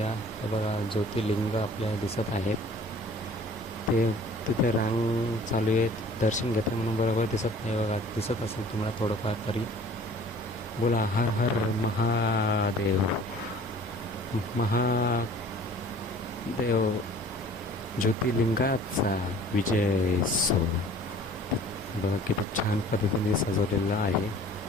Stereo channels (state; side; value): normal; both; correlation 0.49